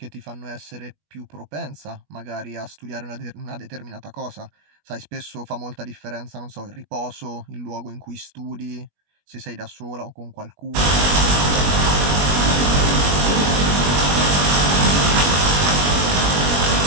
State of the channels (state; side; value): late; left; 21 ms